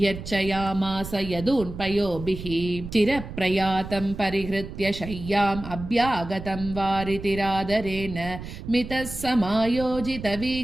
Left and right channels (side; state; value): right; noise; rumble, 10 dB below the sound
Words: जगामास यदून्पयोभिः चिरप्रयातं परिहृत्य शय्याम् अभ्यागतं वारितिरादरेण मितः